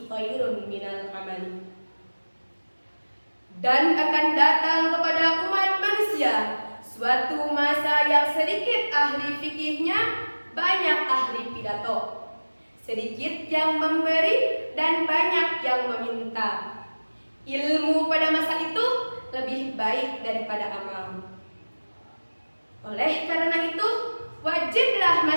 khairun minal amali. Dan akan datang kepada umat manusia suatu masa yang sedikit ahli fikihnya, banyak ahli pidato, sedikit yang memberi dan banyak yang meminta. Ilmu pada masa itu lebih baik daripada amal. Oleh karena itu, wajib wajiblah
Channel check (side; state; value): both; inverted; correlation -1.00